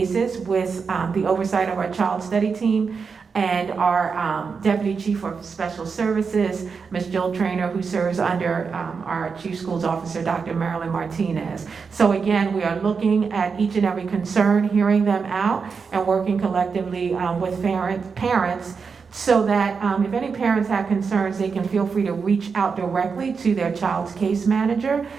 with the oversight of our child study team and our Deputy Chief of Special Services, Ms. Jill Traynor, who serves under our Chief Schools Officer, Dr. Marilyn Martinez. So again, we are looking at each and every concern, hearing them out, and working collectively with parents so that if any parents have concerns, they can feel free to reach out directly to their child's case manager,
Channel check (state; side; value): quieter; left; 5.4 dB